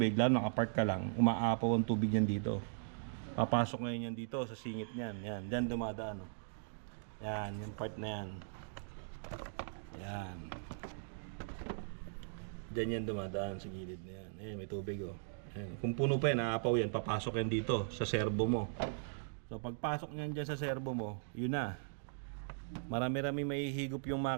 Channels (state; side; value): silent; left; digital silence